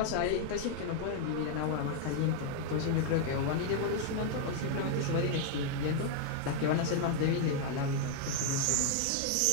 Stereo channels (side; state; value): both; different; correlation 0.00